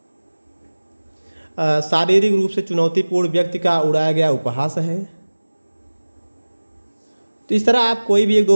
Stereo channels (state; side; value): inverted; both; correlation -1.00